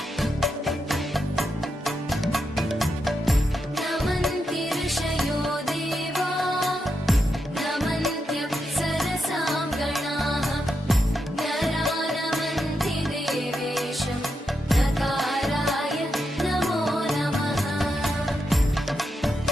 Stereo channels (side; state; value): both; normal; correlation 0.85